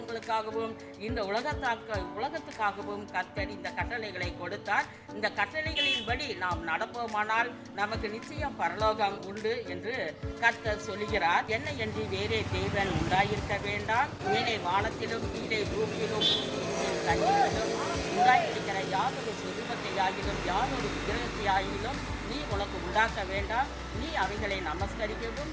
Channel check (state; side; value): identical; both; correlation 1.00